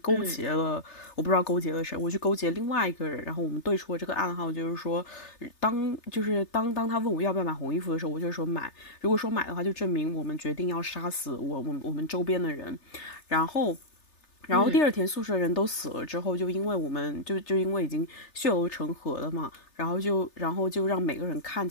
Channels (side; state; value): right; late; 3.3 ms